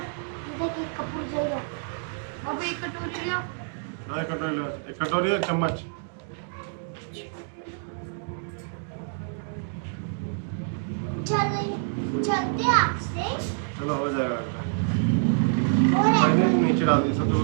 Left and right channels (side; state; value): left; silent; 60 dB below the other